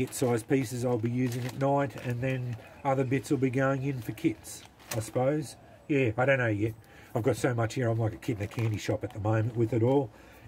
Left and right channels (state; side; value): identical; both; correlation 1.00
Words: sized pieces I'll be using at night, and then other bits will be going in for kits, I suppose. Yeah, I don't know yet. I've got so much here, I'm like a kid in a candy shop at the moment with it all.